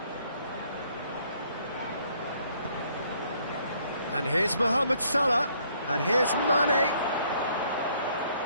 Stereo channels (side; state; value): both; inverted; correlation -0.66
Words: And here's Mohamed Salah. And here's Mane.